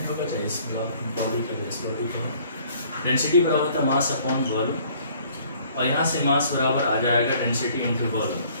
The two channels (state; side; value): inverted; both; correlation -0.57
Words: होगा, चाहे इस बॉडी के बेस बॉडी का डेंसिटी बराबर होता है मास अपॉन वॉल्यूम, और यहाँ से मास बराबर आ जाएगा डेंसिटी इंटू वॉल्यूम।